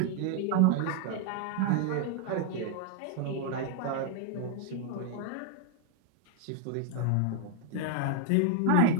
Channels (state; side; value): different; both; correlation 0.01